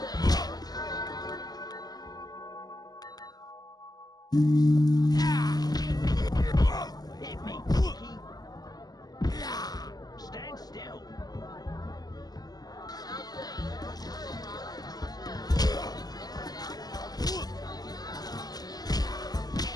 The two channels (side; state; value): right; late; 0.19 ms